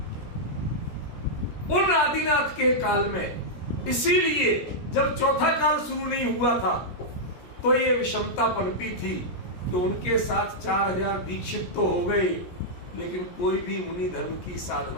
उन आदिनाथ के काल में, इसीलिए जब चौथा काल शुरू नहीं हुआ था तो ये विषमता पनपी थी कि उनके साथ 4000 दीक्षित तो हो गए, लेकिन कोई भी मुनि धर्म की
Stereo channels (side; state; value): right; late; 17 ms